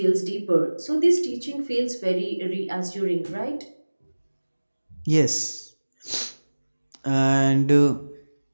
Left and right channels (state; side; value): inverted; both; correlation -1.00